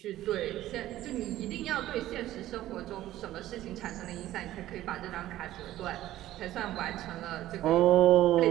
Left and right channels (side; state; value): left; quieter; 14.4 dB